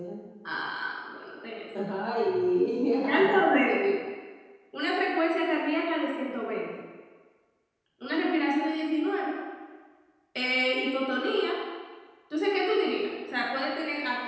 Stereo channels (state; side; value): identical; both; correlation 1.00